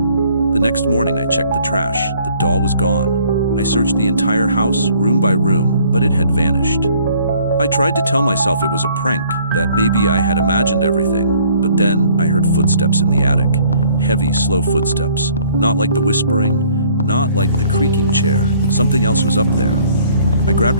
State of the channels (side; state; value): both; inverted; correlation -0.59